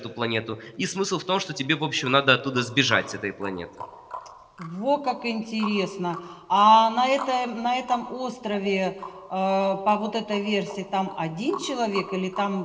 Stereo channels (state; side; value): identical; both; correlation 1.00